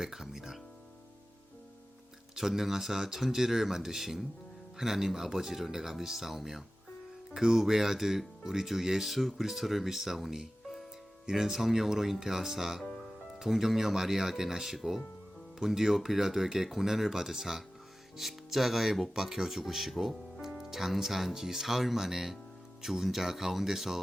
전능하사 천지를 만드신 하나님 아버지를 내가 믿사오며 그 외아들 우리 주 예수 그리스도를 믿사오니 이는 성령으로 잉태하사 동정녀 마리아에게 나시고 본디오 빌라도에게 고난을 받으사 십자가에 못 박혀 죽으시고 장사한 지 사흘 만에 죽은 자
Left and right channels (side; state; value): both; normal; correlation 0.96